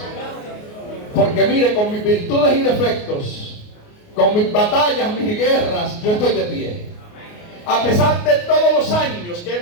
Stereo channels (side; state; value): right; late; 28 ms